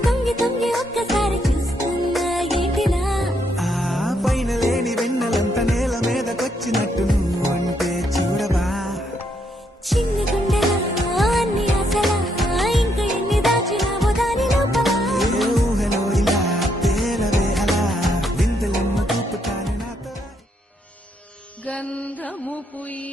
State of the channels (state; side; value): normal; both; correlation 0.75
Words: తొంగి తొంగి ఒక్కసారి చూస్తున్నా ఏంటిలా ఆ పైన లేని వెన్నెలంతా నేల మీదకొచ్చినట్టు నువ్వుంటే చూడవా చిన్ని గుండెలా అన్ని ఆశలా ఇంకా ఎన్ని దాచినావో దాని లోపల ఏ ఊహలో ఇలా తేలవే అలా వింతలెన్నో చూపుతాను నాతో గంధము